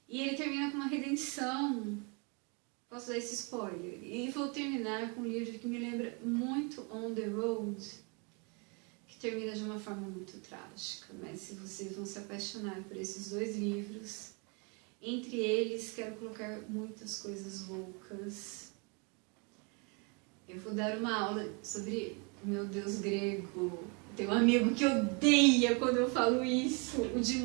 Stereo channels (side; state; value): left; quieter; 33.4 dB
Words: E ele termina com uma redenção Posso dar esse spoiler? E vou terminar com um livro que me lembra muito On the Road, que termina de uma forma muito trágica, mas se vocês vão se apaixonar por esses dois livros, entre eles quero colocar muitas coisas loucas. Eu vou dar uma aula sobre o meu deus grego. Tem um amigo que odeia quando eu falo isso, o Jim